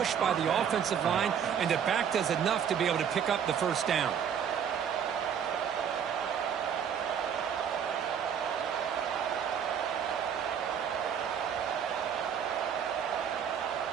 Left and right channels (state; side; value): quieter; left; 8.1 dB